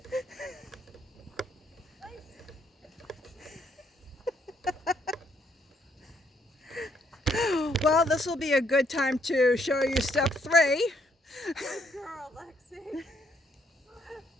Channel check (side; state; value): both; normal; correlation 0.70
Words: Well, this will be a good time to show you step 3. Good girl, Lexi.